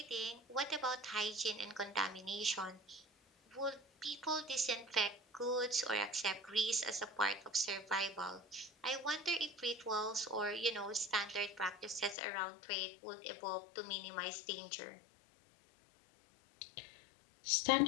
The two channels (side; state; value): right; drops out; at 12.2 s